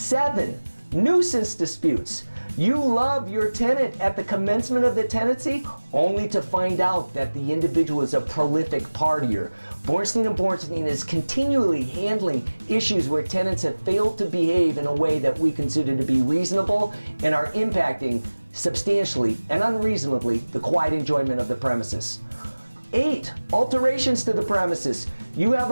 nuisance disputes. You love your tenant at the commencement of the tenancy only to find out that the individual is a prolific partier. Bornstein & Bornstein is continually handling issues where tenants have failed to behave in a way that we consider to be reasonable and are impacting substantially and unreasonably the quiet enjoyment of the premises. 8, alterations to the premises. You have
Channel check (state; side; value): inverted; both; correlation -1.00